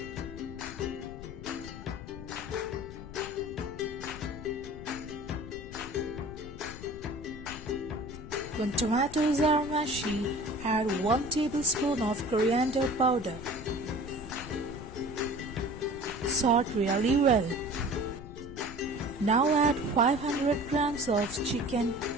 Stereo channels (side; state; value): left; noise; rumble, 13 dB below the sound